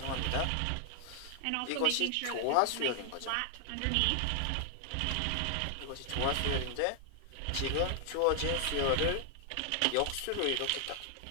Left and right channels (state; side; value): different; both; correlation 0.00